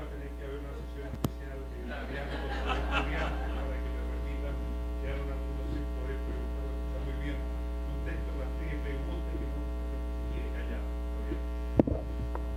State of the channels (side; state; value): both; identical; correlation 1.00